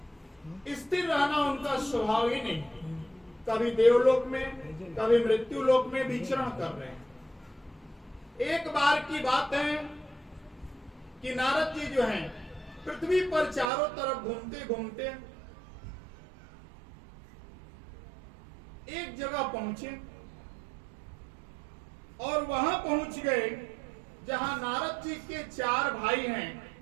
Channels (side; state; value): left; drops out; at 13.7 s